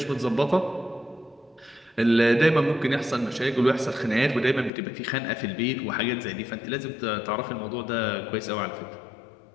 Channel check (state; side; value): drops out; right; at 4.7 s